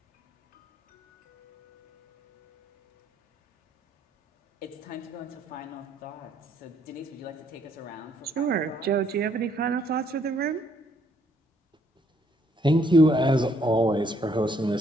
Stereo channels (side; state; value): both; normal; correlation 0.68